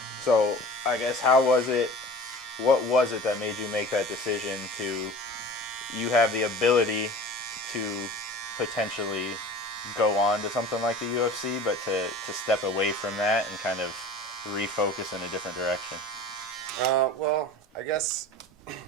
So I guess what was it that made you make that decision you have the ability to potentially go on to something like the UFC, but to step away from that and kind of refocus in a different direction? I guess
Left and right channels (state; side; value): normal; both; correlation 0.40